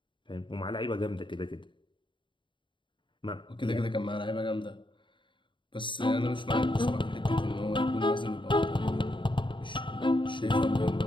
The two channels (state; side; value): late; right; 0.23 ms